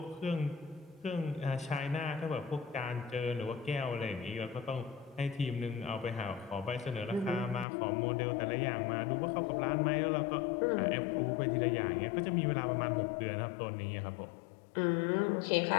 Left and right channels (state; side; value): drops out; right; at 7.7 s